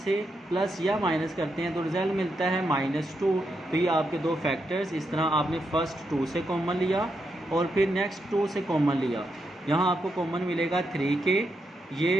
प्लस या माइनस करते हैं तो रिज़ल्ट मिलता है -2। तो ये आपके दो फैक्टर्स, इस तरह आपने फर्स्ट 2 से कॉमन लिया और फिर नेक्स्ट 2 से कॉमन लिया। यहाँ आपको कॉमन मिलेगा 3 के,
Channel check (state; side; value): normal; both; correlation 0.83